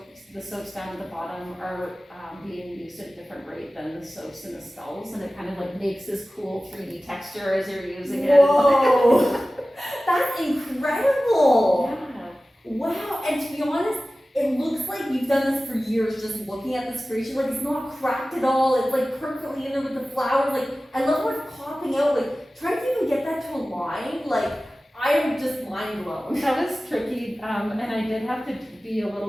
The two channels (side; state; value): both; normal; correlation 0.96